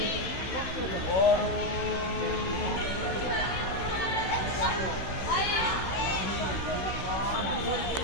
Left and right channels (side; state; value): right; late; 16 ms